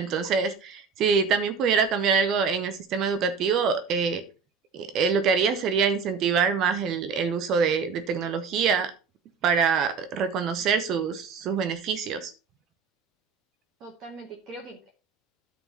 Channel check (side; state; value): left; quieter; 5.6 dB